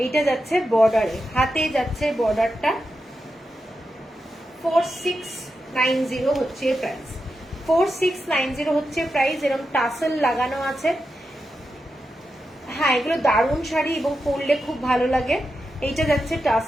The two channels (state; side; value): normal; both; correlation 0.89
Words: এইটা যাচ্ছে বর্ডারে, হাতে যাচ্ছে বর্ডারটা। 4690 হচ্ছে প্রাইস, 4690 হচ্ছে প্রাইস। এরকম টাসেল লাগানো আছে। হ্যাঁ, এগুলো দারুণ শাড়ি এবং পরলে খুব ভালো লাগে। এইটা যাচ্ছে